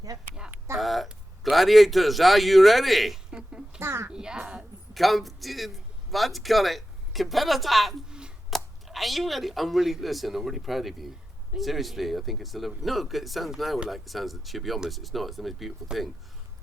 Yep. Yeah. Gladiators, are you ready? Yes. Come, what call it? Competitor. Are you ready? I'm really proud of you. Seriously, I think it's a lovely. No, it sounds that she'll be honest. It's not. It's the most beautiful thing.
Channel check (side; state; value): both; normal; correlation 0.91